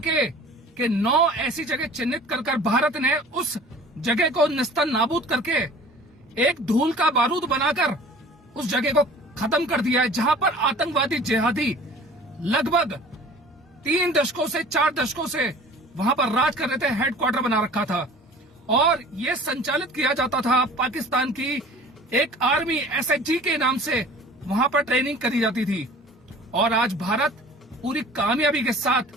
के 9 ऐसी जगह चिन्हित कर भारत ने उस जगह को नेस्तनाबूद करके एक धूल का बारूद बनाकर उस जगह को खत्म कर दिया है, जहां पर आतंकवादी जिहादी लगभग 3 दशकों से 4 दशकों से वहां पर राज कर रहे थे। हेडक्वार्टर बना रखा था और यह संचालित किया जाता था। पाकिस्तान की एक आर्मी SHG के नाम से वहां पर ट्रेनिंग करी जाती थी। और आज भारत पूरी कामयाबी के साथ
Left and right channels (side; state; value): both; normal; correlation 0.45